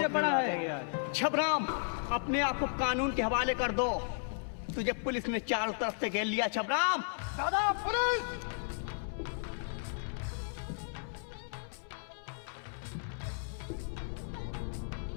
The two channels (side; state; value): right; silent; 55 dB below the other